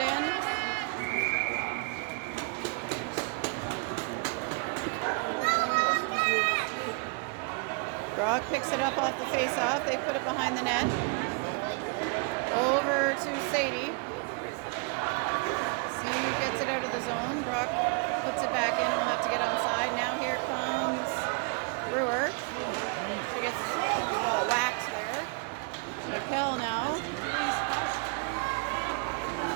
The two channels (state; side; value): quieter; left; 34.4 dB